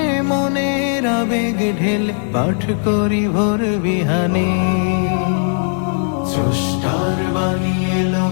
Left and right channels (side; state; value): right; silent; digital silence